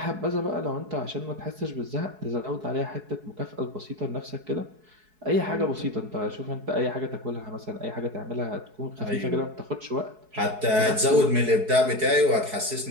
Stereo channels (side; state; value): left; late; 4.7 ms